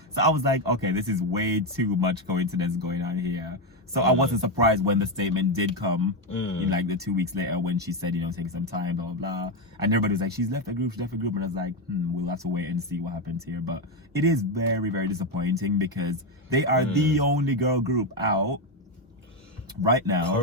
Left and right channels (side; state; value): both; normal; correlation 0.08